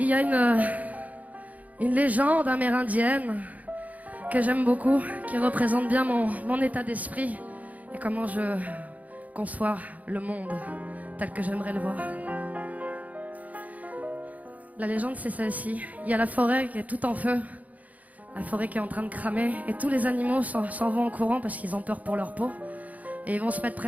y a une légende amérindienne que j'aime beaucoup, qui représente bien mon état d'esprit et comment je conçois le monde tel que j'aimerais le voir. La légende, c'est celle-ci. Il y a la forêt qui est tout en feu, la forêt qui est en train de cramer, et tous les animaux s'en vont en courant parce qu'ils ont peur pour leur peau. Et ils vont se mettre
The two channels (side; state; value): left; late; 0.075 ms